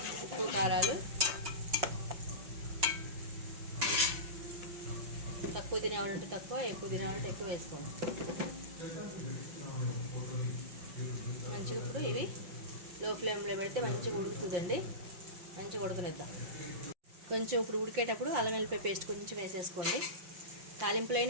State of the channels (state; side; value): late; left; 5.7 ms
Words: ఉప్పు కారాలు తక్కువ తినేవాళ్ళంటే తక్కువ, ఎక్కువ తినేవాళ్ళంటే ఎక్కువ వేసుకోండి. మంచిగా ఇప్పుడు ఇవి లో ఫ్లేమ్లో పెడితే మంచిగా ఉడుకుతుందండి. మంచిగా ఉడకనిద్దాం. కొంచెం ఇప్పుడు ఉడికేటప్పుడు అల్లం వెల్లిపాయ పేస్ట్ కొంచెం వేసేసుకోండి.